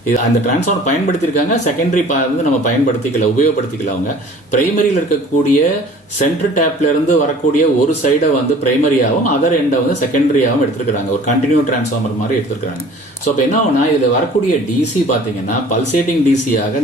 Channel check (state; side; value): normal; both; correlation 0.48